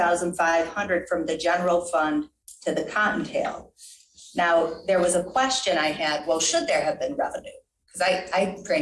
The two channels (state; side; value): identical; both; correlation 1.00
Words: from the general fund to the Cottontail. Now, there was a question I had, well, should there have been revenue? Because I